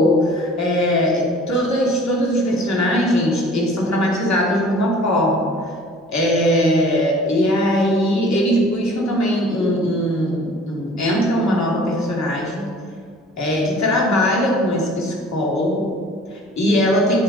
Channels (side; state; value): both; normal; correlation 0.49